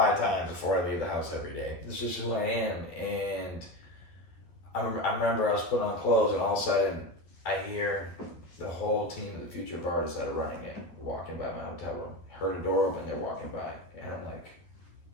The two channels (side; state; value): right; late; 11 ms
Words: times before I leave the house every day. This is just who I am. And I remember I was putting on clothes, and all of a sudden I hear the whole team of the Future of Artists that are running it walking by my hotel room. Heard a door open, they're walking by, and I'm like,